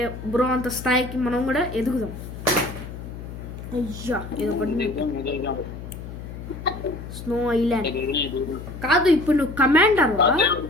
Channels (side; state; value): left; noise; hum, 11 dB below the sound